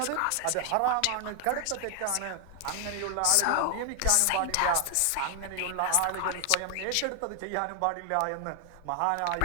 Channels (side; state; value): both; different; correlation 0.00